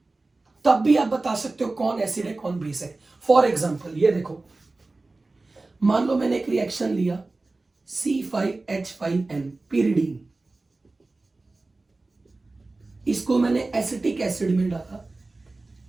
तब भी आप बता सकते हो कौन एसिड है कौन बेस है। फॉर एग्जांपल ये देखो, मान लो मैंने एक रिएक्शन लिया C5H5N pyridine, इसको मैंने एसिटिक एसिड में डाला,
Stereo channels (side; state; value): left; quieter; 3.3 dB